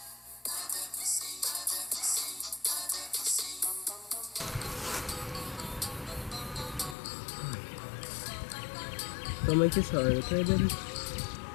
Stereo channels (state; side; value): drops out; right; at 7.0 s